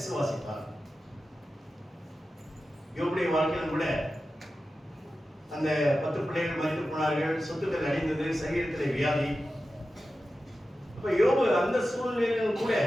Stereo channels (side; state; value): both; normal; correlation 0.93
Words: யோபுடைய வாழ்க்கையிலும் கூட அந்த 10 பிள்ளைகள் மரித்து போனார்கள், சொத்துக்கள் அடைந்தது, சரீரத்தில் வியாதி. அப்ப யோபு அந்த சூழ்நிலையிலும் கூட